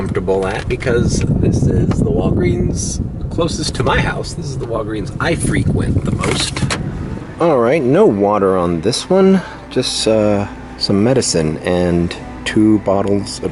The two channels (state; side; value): identical; both; correlation 1.00